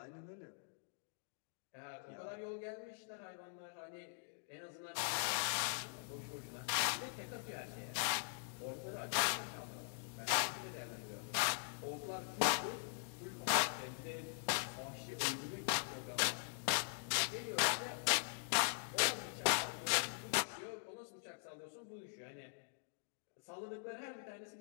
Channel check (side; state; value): right; silent; digital silence